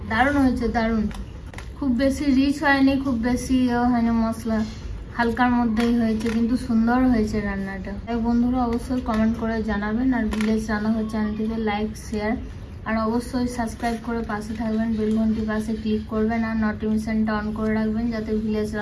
দারুণ হয়েছে, দারুণ। খুব বেশি রিচ হয়নি, খুব বেশি হয়নি, মশলা হালকার মধ্যেই হয়েছে, কিন্তু সুন্দর হয়েছে রান্নাটা। তাই বন্ধুরা অবশ্যই কমেন্ট করে জানাবেন, আর ভিলেজ রান্নাঘর চ্যানেলটিকে লাইক শেয়ার আর অবশ্যই সাবস্ক্রাইব করে পাশে থাকবেন, বেল ঘন্টির পাশে ক্লিক করবেন আর নোটিফিকেশনটা অন করে রাখবেন, যাতে ভিলেজ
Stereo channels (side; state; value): both; identical; correlation 1.00